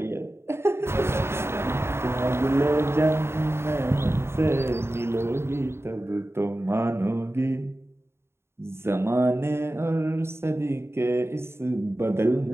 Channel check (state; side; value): late; left; 0.12 ms